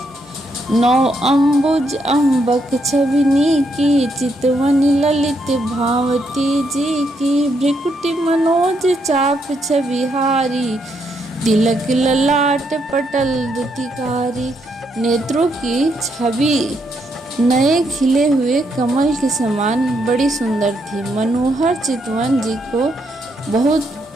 नौ अम्बुज अम्बक छविनी की, चितवन ललित भावती जी की। भ्रिकुटि मनोज चाप छविहारी, तिलक ललाट पटल दुतिकारी। नेत्रों की छवि नए खिले हुए कमल के समान बड़ी सुंदर थी। मनोहर चितवन जी को बहुत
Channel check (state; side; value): normal; both; correlation 0.77